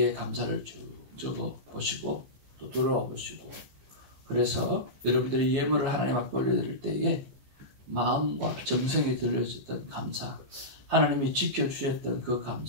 감사를 쭉 적어 보시고 또 돌아와 보시고, 그래서 여러분들이 예물을 하나님 앞에 올려드릴 때에 마음과 정성이 들려졌던 감사, 하나님이 지켜주셨던 그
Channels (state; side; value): late; left; 14 ms